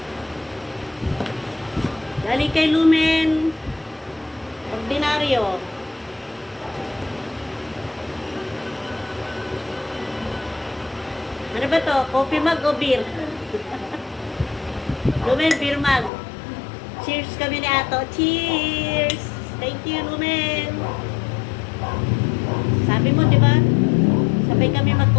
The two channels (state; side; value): drops out; right; at 16.1 s